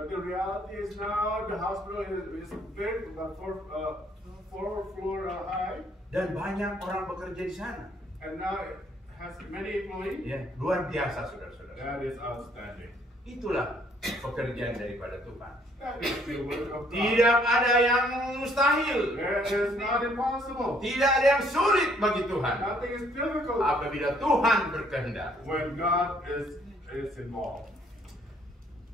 the reality is now the hospital is big, about 4 floor high, Dan banyak orang bekerja di sana. and now it has many employees. Ya, luar biasa saudara-saudara. That is outstanding. Itulah pekerjaan daripada Tuhan. That is the work of God. Tidak ada yang mustahil. That is not impossible. Tidak ada yang sulit bagi Tuhan. Nothing is difficult Apabila Tuhan berkehendak. when God is involved.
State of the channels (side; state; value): both; normal; correlation 0.65